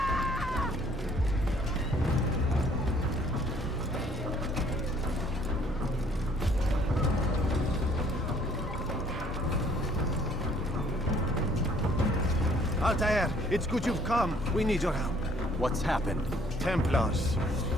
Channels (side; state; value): both; normal; correlation 0.60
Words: Altair, it's good you've come. We need your help. What's happened? Templars.